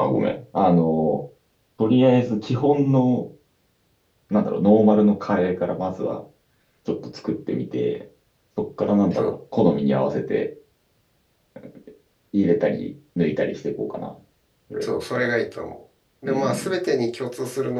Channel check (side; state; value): both; identical; correlation 1.00